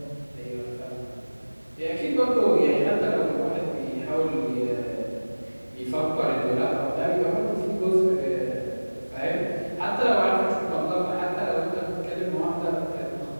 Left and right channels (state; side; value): inverted; both; correlation -1.00